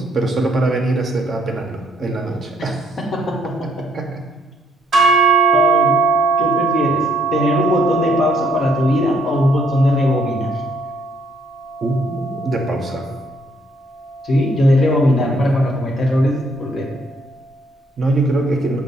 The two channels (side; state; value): both; normal; correlation 0.68